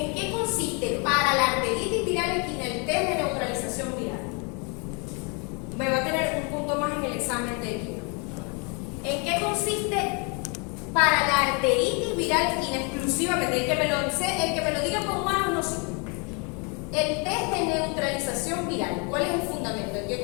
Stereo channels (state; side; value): quieter; right; 33.9 dB